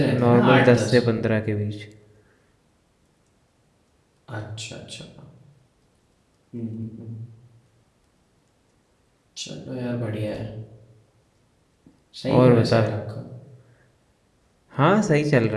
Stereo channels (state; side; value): identical; both; correlation 1.00